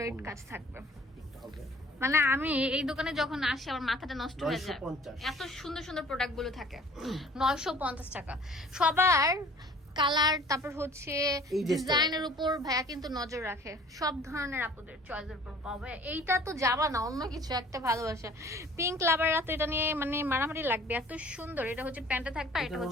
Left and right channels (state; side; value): normal; both; correlation 0.50